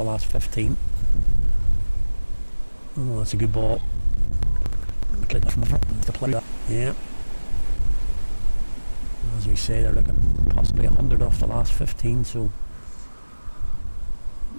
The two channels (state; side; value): inverted; both; correlation -1.00